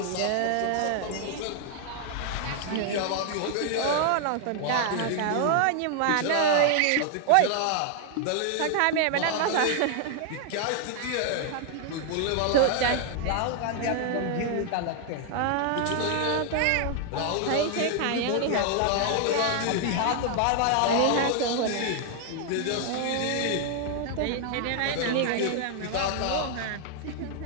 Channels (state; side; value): different; both; correlation 0.00